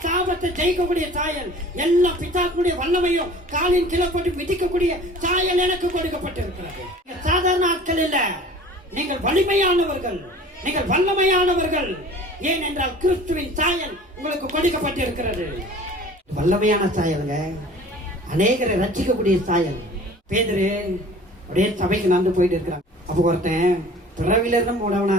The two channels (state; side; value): normal; both; correlation 0.45